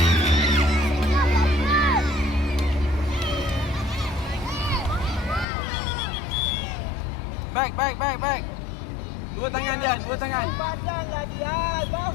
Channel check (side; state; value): right; drops out; at 5.5 s